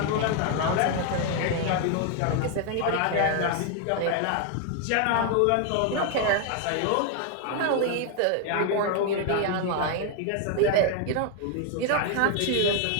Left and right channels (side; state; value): both; different; correlation 0.00